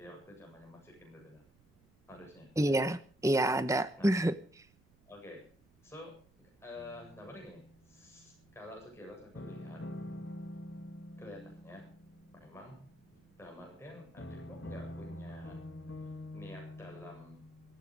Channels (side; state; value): right; noise; rumble, 29 dB below the sound